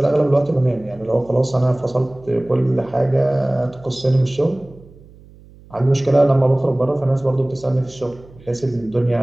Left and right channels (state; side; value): noise; right; hum, 24 dB below the sound